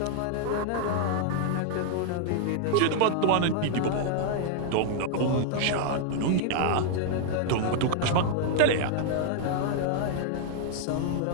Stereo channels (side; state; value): both; different; correlation 0.00